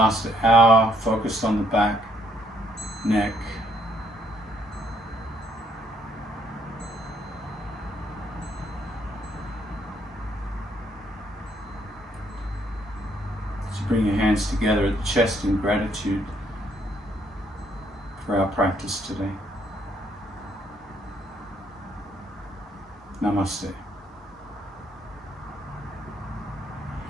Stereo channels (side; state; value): both; normal; correlation 0.69